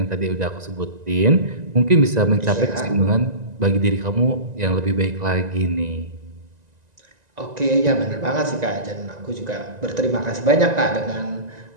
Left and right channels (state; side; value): late; left; 1.9 ms